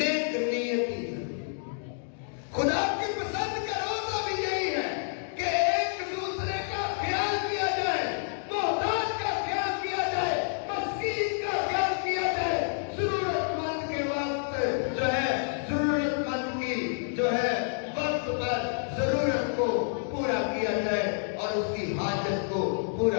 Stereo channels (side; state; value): right; silent; digital silence